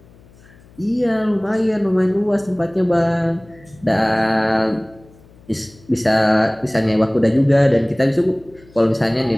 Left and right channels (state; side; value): noise; left; hum, 26 dB below the sound